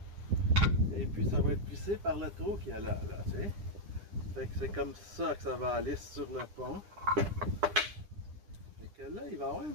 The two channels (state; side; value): late; left; 10 ms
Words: Et puis ça va être vissé par le trou qu'il y a là, tu sais. Fait que c'est comme ça que ça va aller sur le pont. Fait que là, il va y avoir un